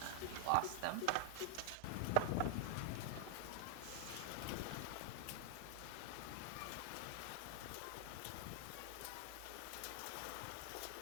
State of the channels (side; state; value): both; different; correlation 0.00